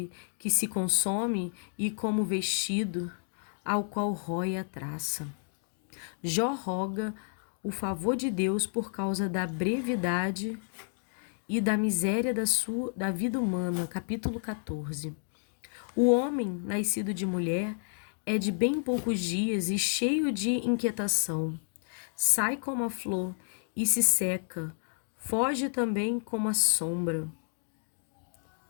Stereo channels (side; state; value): right; silent; digital silence